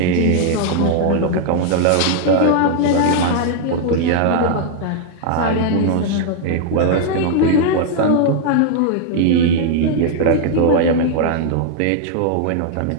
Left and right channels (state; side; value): different; both; correlation 0.00